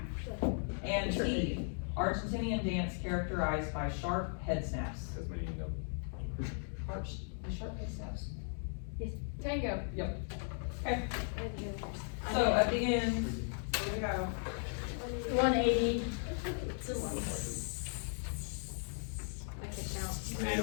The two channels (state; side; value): silent; right; 53 dB below the other